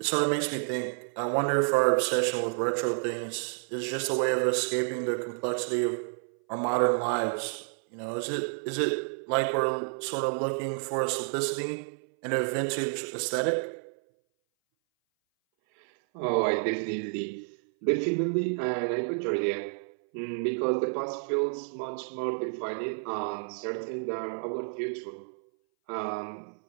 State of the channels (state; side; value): silent; left; 58 dB below the other